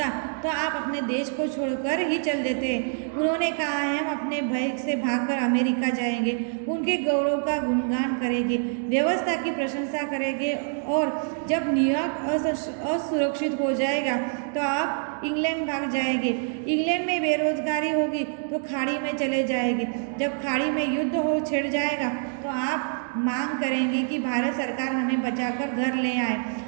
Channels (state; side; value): silent; left; 61 dB below the other